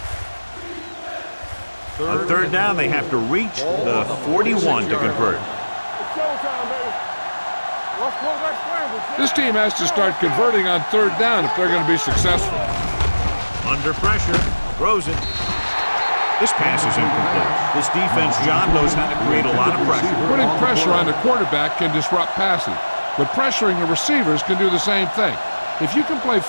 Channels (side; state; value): both; inverted; correlation -1.00